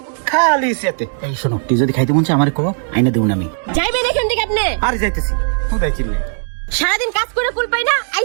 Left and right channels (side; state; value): left; silent; digital silence